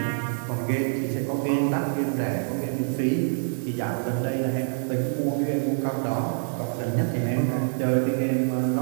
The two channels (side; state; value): left; silent; digital silence